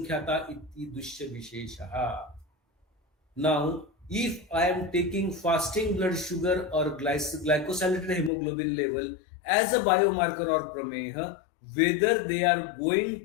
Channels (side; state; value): right; drops out; at 8.3 s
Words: इति दुष्य विशेषः. Now, if I am taking fasting blood sugar or glycosylated hemoglobin level as a biomarker or prameha, whether they are